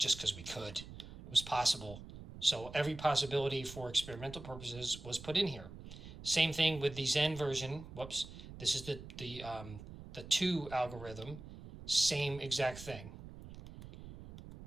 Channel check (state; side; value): noise; right; rumble, 14 dB below the sound